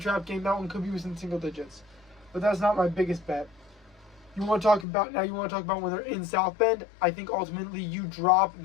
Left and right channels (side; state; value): right; drops out; at 4.9 s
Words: game. That one could be within single digits. But that's not my biggest bet. You want to talk about when they're in South Bend? I think ultimately you drop